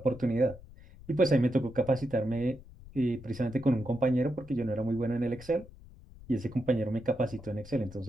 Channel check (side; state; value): left; noise; rumble, 19 dB below the sound